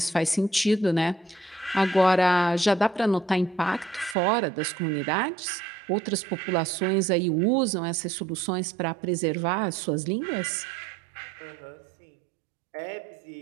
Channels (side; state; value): left; drops out; at 4.2 s